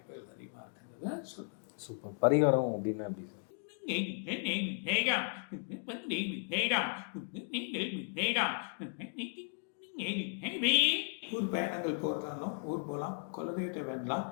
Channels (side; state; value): right; silent; 54 dB below the other